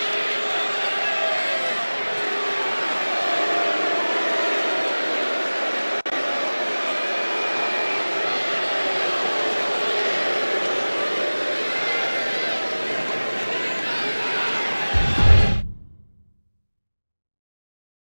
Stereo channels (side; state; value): both; inverted; correlation -1.00